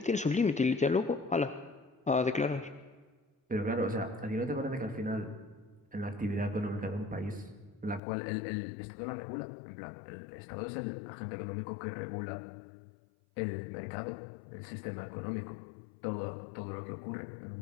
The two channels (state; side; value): drops out; right; at 8.0 s